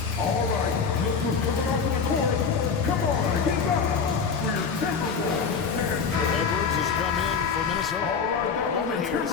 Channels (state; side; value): quieter; right; 5.7 dB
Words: All right, look who's coming out to the court. Come on, get up for your Timberwolves. Edwards has come in for Minnesota. A moment here to